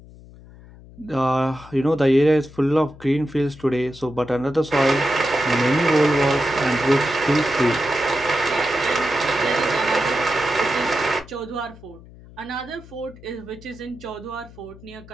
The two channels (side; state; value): left; noise; hum, 20 dB below the sound